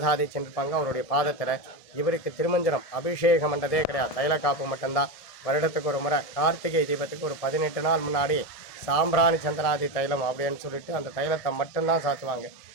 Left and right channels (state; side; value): late; right; 1.7 ms